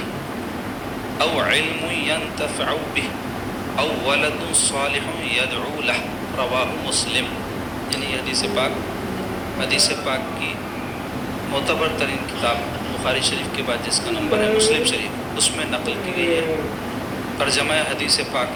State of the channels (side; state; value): both; identical; correlation 1.00